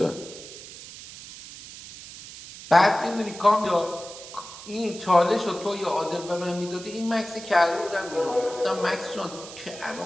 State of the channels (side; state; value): right; noise; hiss, 14 dB below the sound